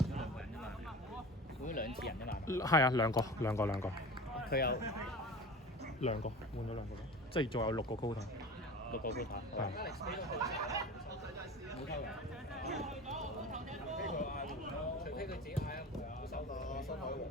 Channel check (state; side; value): normal; both; correlation 0.35